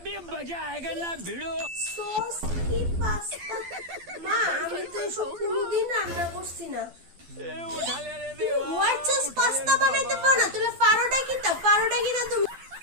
मजा आएगा ना भिड़ो। সস কি পাস্তা? মা আমি তো এসব কোনোদিন রান্না করছি না। उठा ले रे देवा। হোয়াইট সস পাস্তা বানাইতে পারো না? তুমি পারোটা কিটা? পারোটা কিটা তুমি?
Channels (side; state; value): left; late; 12 ms